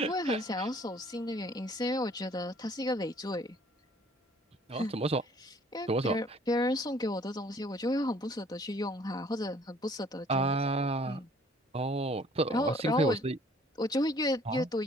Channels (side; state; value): both; normal; correlation 0.57